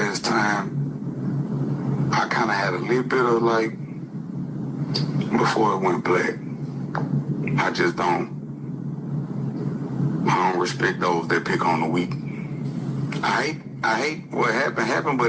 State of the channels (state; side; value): identical; both; correlation 1.00